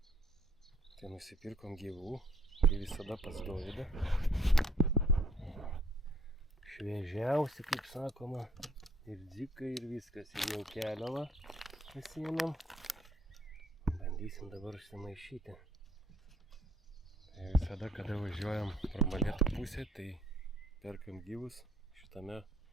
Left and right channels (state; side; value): normal; both; correlation 0.61